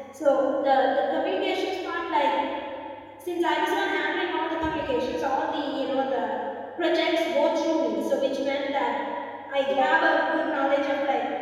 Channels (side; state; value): both; identical; correlation 1.00